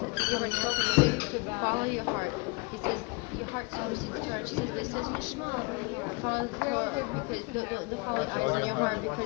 give her an answer. He said, to follow your heart. He says, your heart supersedes Torah. And she says, but it says in the Shema, follow the Torah because the follow eyes on your heart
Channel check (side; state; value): right; quieter; 30.2 dB